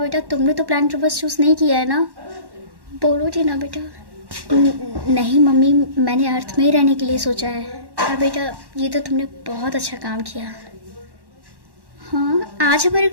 तुमने तो प्लैनेट रिवर्स चूज़ नहीं किया है ना? बोलो टीना बेटा। नहीं मम्मी, मैंने अर्थ में ही रहने के लिए सोचा है। हाँ बेटा, ये तो तुमने बहुत अच्छा काम किया। हाँ, आज हमारे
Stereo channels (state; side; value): late; left; 1.1 ms